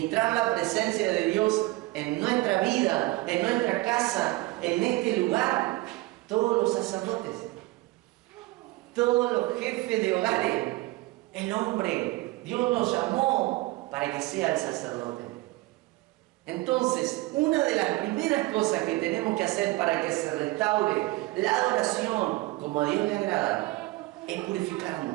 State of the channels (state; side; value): quieter; left; 20.2 dB